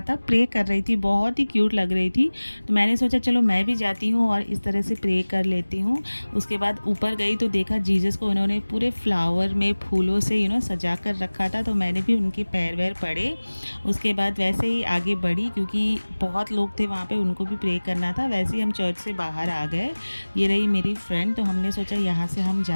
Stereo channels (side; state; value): both; inverted; correlation -1.00